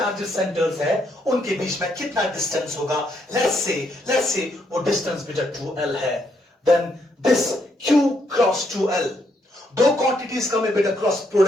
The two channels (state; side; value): normal; both; correlation 0.75